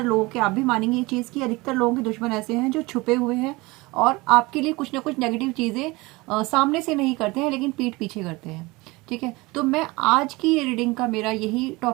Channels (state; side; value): quieter; left; 23.1 dB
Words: लोगों के, आप भी मानेंगे ये चीज़ कि अधिकतर लोगों के दुश्मन ऐसे हैं जो छुपे हुए हैं और आपके लिए कुछ ना कुछ नेगेटिव चीज़ें सामने से नहीं करते हैं लेकिन पीठ पीछे करते हैं, ठीक है। तो मैं आज की ये रीडिंग का मेरा यही